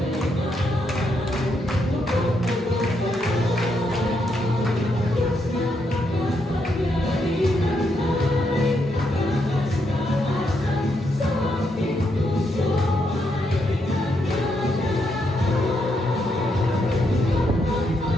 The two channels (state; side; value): normal; both; correlation 0.79